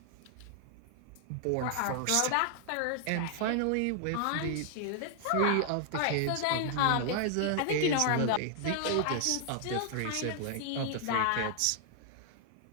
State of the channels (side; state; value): both; different; correlation 0.00